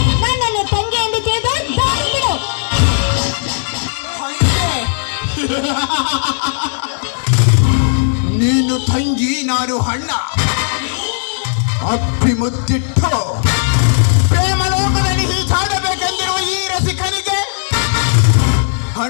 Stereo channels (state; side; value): silent; right; digital silence